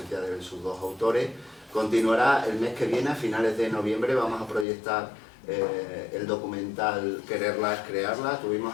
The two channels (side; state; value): right; drops out; at 4.7 s